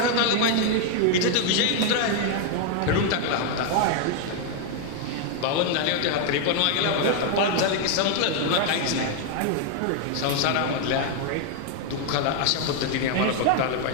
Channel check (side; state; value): both; different; correlation 0.00